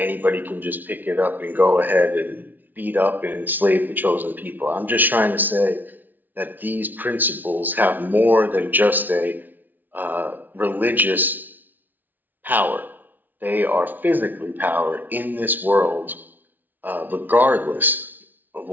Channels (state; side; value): late; left; 0.085 ms